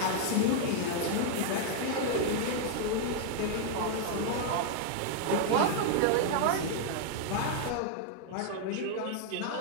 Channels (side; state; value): both; different; correlation 0.00